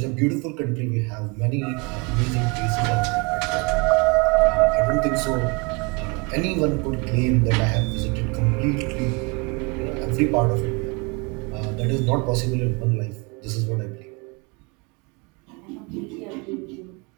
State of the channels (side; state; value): left; quieter; 29.5 dB